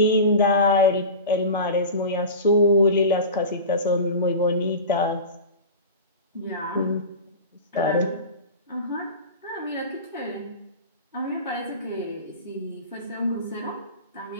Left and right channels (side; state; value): both; inverted; correlation -0.31